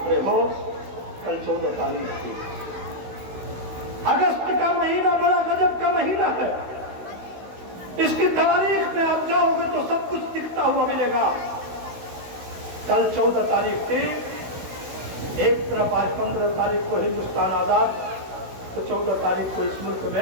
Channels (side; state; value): left; late; 16 ms